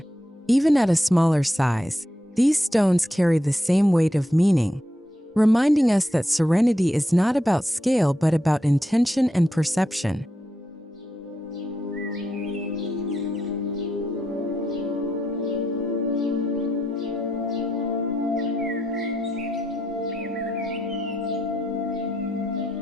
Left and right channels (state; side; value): normal; both; correlation 0.82